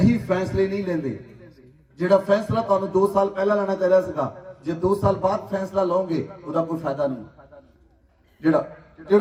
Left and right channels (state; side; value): identical; both; correlation 1.00